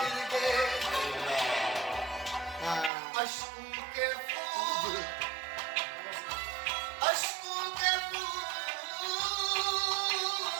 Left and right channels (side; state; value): left; drops out; at 2.9 s